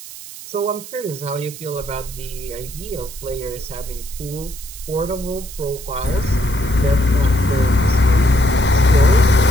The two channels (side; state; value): right; noise; hiss, 14 dB below the sound